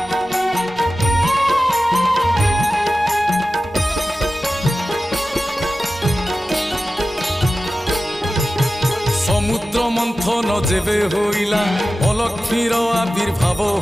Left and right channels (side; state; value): both; normal; correlation 0.94